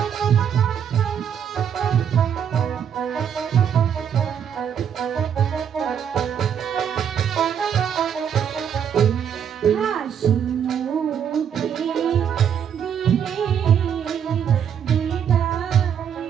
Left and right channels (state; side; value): quieter; left; 8.3 dB